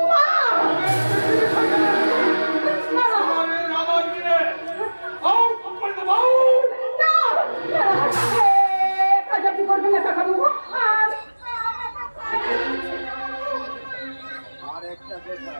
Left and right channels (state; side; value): inverted; both; correlation -1.00